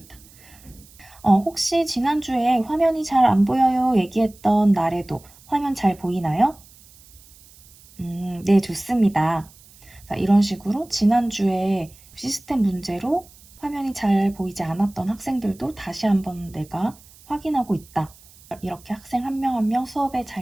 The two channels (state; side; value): noise; right; hiss, 25 dB below the sound